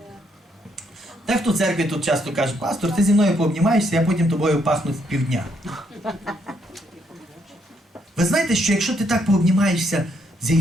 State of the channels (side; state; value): both; normal; correlation 0.73